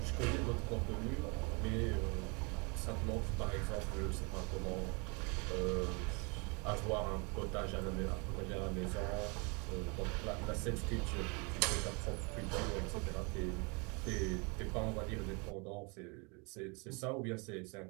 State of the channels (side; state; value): left; quieter; 31.3 dB